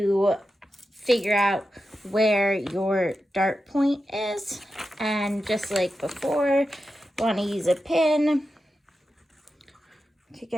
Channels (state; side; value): normal; both; correlation 0.90